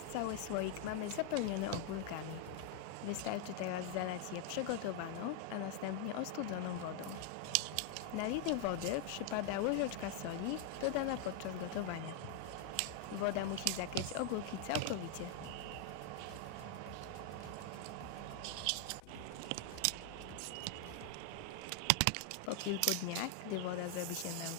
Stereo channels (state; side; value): different; both; correlation 0.00